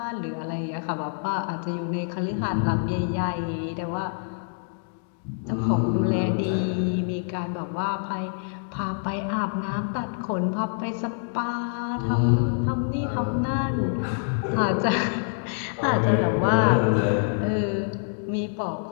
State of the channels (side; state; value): right; silent; 61 dB below the other